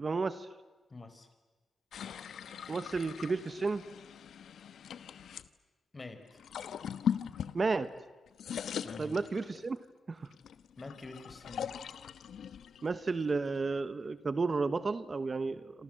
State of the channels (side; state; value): both; normal; correlation 0.87